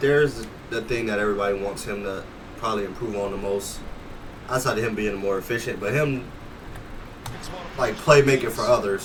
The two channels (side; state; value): both; identical; correlation 1.00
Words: is the thing that everybody wants him to probably improve on the most. Outside of him being more efficient, but him, like, playmaking for